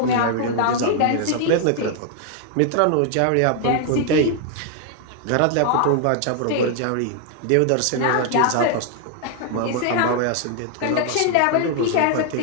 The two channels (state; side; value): different; both; correlation 0.00